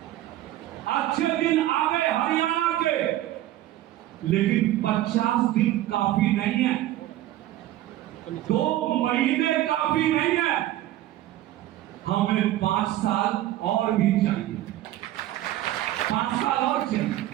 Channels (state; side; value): quieter; left; 14.3 dB